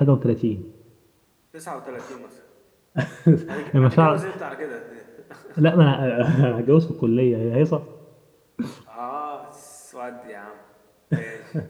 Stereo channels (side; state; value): both; identical; correlation 1.00